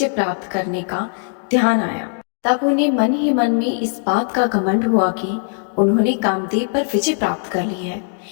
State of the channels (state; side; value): silent; right; 57 dB below the other